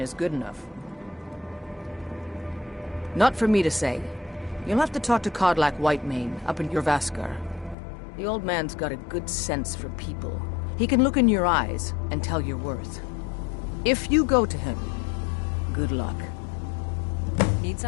good enough. Not for me to say. You'll have to talk to Kodlak Whitemane up in your Vaskar. The old man's got a good sense for people. He can look in your eyes and tell your worth. If you go to him, good luck. Need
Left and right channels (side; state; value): right; drops out; at 7.8 s